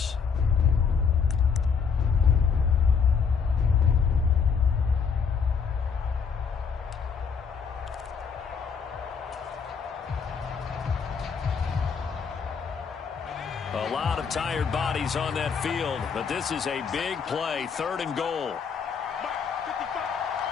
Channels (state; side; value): quieter; right; 6.1 dB